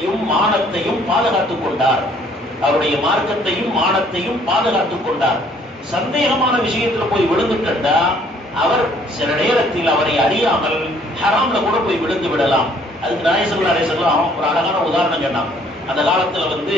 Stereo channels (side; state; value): both; normal; correlation 0.61